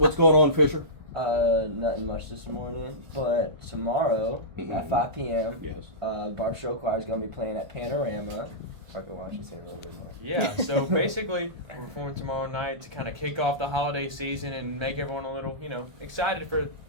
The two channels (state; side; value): late; left; 1.3 ms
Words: going on, Fisher? Nothing much this morning, but tomorrow at 5 p.m. Yes. Barbe Rock Choir is going to be playing at Panorama. Parker, why don't you say a little bit more? Yeah, so basically, we're performing tomorrow night to kind of kick off the holiday season and make everyone a little, excited for